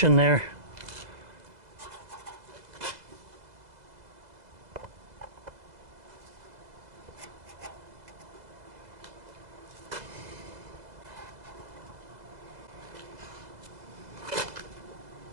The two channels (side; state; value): left; late; 2.0 ms